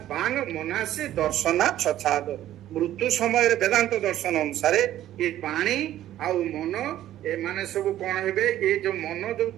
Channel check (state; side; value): quieter; left; 12.9 dB